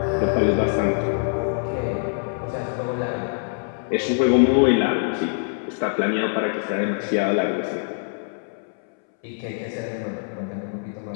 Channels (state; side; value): silent; right; 63 dB below the other